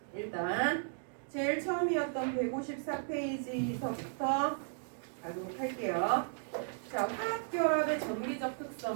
일단 제일 처음이었던 154페이지서부터 가도록 할게요. 자, 화학결합의 전기적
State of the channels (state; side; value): silent; left; digital silence